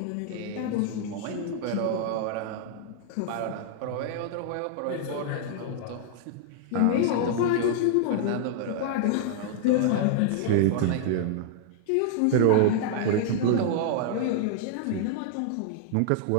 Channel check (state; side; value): different; both; correlation -0.01